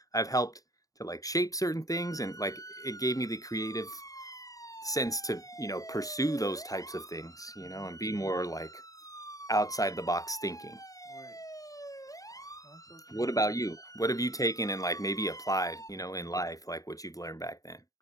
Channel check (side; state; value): right; late; 0.17 ms